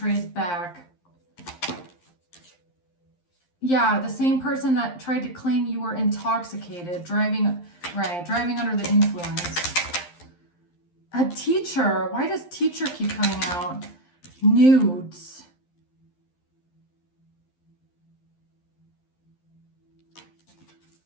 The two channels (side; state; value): right; late; 11 ms